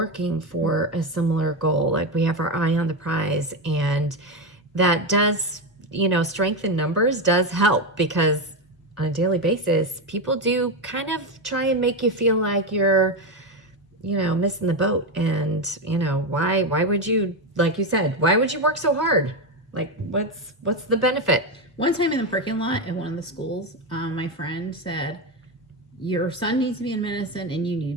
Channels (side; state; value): both; normal; correlation 0.12